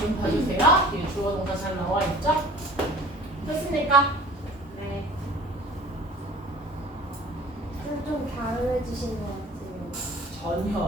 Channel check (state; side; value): normal; both; correlation 0.47